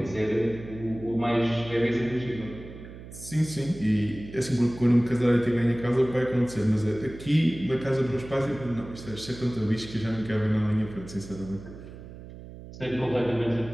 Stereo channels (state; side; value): noise; right; hum, 15 dB below the sound